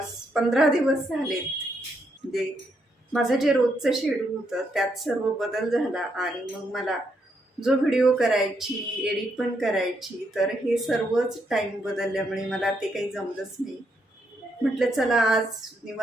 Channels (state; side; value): normal; both; correlation 0.77